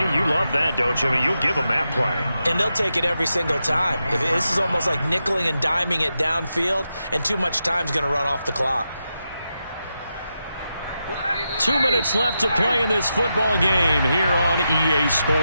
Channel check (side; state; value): both; inverted; correlation -0.87